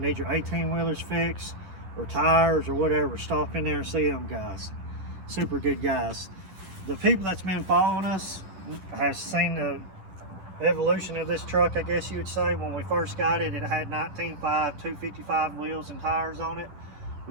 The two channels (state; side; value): late; left; 10 ms